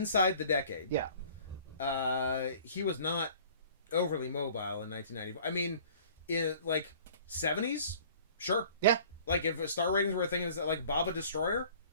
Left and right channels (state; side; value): inverted; both; correlation -0.50